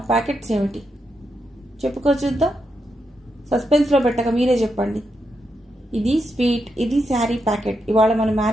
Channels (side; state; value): both; normal; correlation 0.83